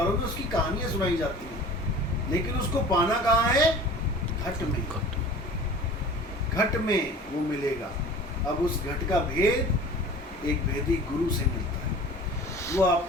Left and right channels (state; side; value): normal; both; correlation 0.42